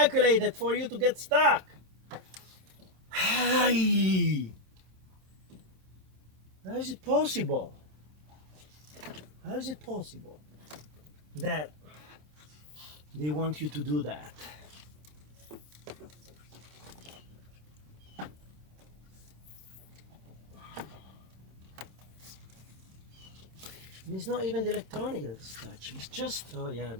for you to get stuck. Hi. How is it possible? How is it possible that they want you to do that? And it's not even the electronic that's touching. It's just, oh yeah,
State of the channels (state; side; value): late; left; 26 ms